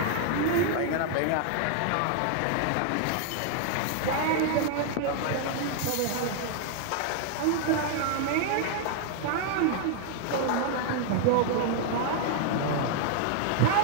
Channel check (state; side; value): different; both; correlation 0.00